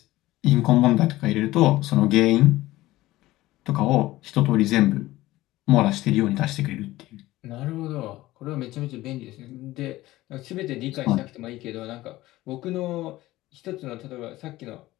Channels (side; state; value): right; quieter; 17.2 dB